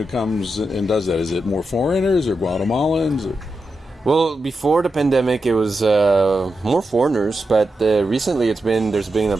comes and does that? Is it more foreigners or Guatemalans? Or? Well, before the pandemic, it was more foreigners, but recently there's been a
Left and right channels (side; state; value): both; normal; correlation 0.88